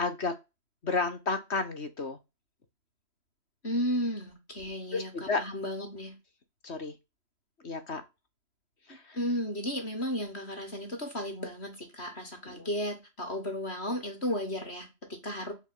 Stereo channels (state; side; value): late; right; 3.1 ms